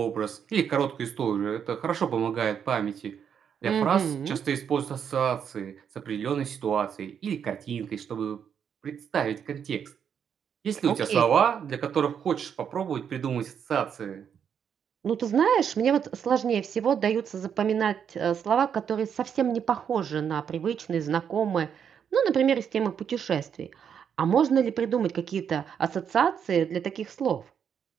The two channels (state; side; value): quieter; left; 7.9 dB